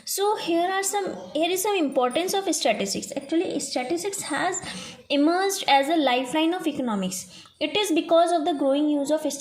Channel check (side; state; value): both; identical; correlation 1.00